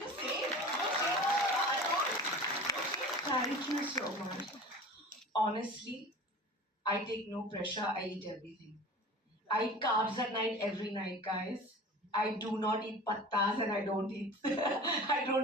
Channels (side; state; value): both; normal; correlation 0.38